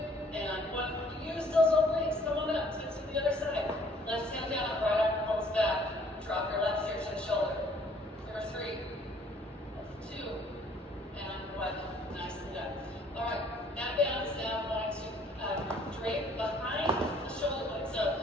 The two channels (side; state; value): both; normal; correlation 0.59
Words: and 1. Use those obliques. Come on up. Take to the other side. Left hand down. Right arm pulls back. Drop your left ear to the shoulder. For 3. 2 and 1. Nicely done. All right. That band is now going to drape behind the shoulder blade. So